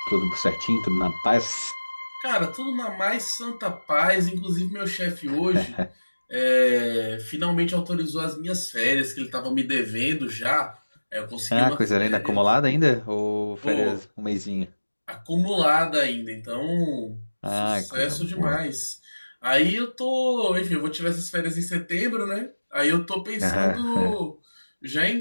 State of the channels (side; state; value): both; inverted; correlation -1.00